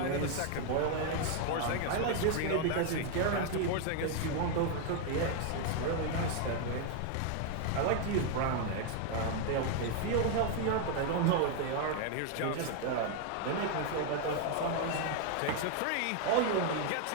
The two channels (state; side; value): different; both; correlation 0.01